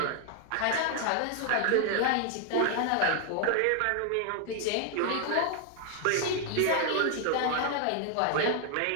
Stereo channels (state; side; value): different; both; correlation 0.00